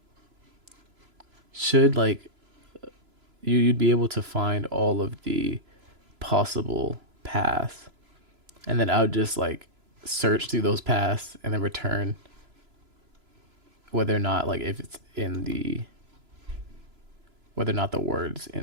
should like you'd be able to find all of the possible paths, and then I would just like search through those paths and then return whether or not like if it's in the whether or not the words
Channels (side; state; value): left; late; 3.0 ms